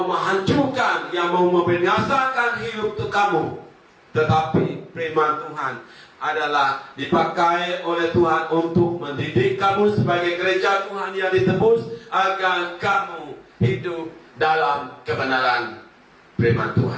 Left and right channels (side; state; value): both; identical; correlation 1.00